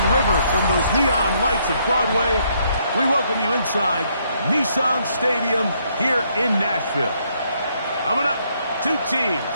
River from those neon lights of Broadway, we welcome you inside Nissan Stadium here in Nashville. Coming up, two teams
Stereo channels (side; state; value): both; inverted; correlation -0.71